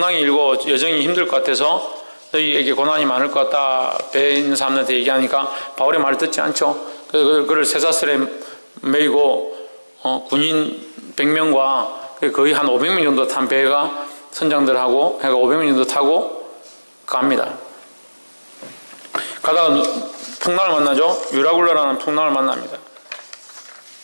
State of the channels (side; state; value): both; inverted; correlation -1.00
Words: 일고 여정이 힘들 것 같아서 너희에게 고난이 많을 것 같다. 배에 있는 사람들한테 얘기하니까 바울의 말을 듣지 않죠. 그래서 그를 쇠사슬에 매이고 군인 100명과 거의 한 500명 정도 탄 배가 선장들하고 해가 500명 정도 타고 갑니다. 가다가 풍랑을 만나죠. 유라굴라라는 풍랑을 만납니다.